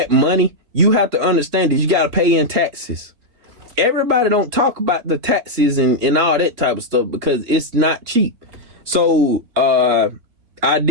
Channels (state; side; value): late; left; 4.0 ms